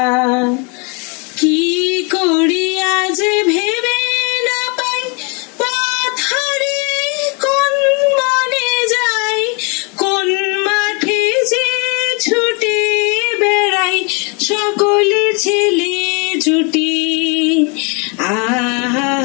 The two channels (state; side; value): quieter; right; 32.6 dB